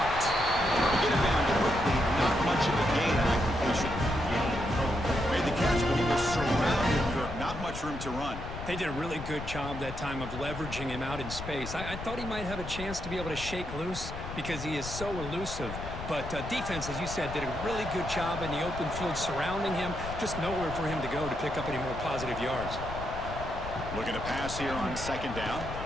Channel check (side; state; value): left; noise; rumble, 9 dB below the sound